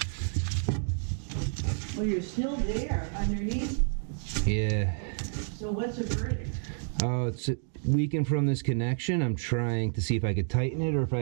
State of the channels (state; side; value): silent; left; digital silence